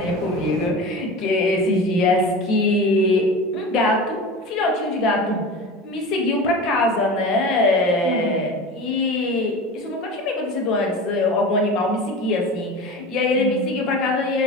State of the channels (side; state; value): both; normal; correlation 0.31